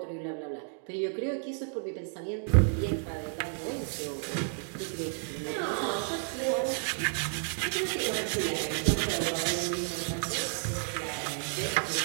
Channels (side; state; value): left; silent; 57 dB below the other